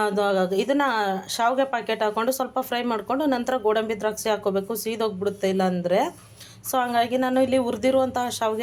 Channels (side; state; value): both; identical; correlation 1.00